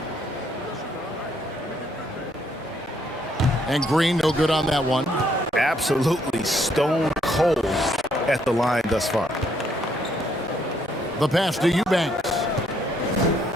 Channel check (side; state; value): both; normal; correlation 0.70